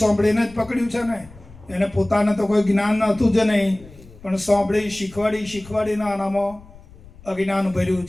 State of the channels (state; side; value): noise; left; rumble, 21 dB below the sound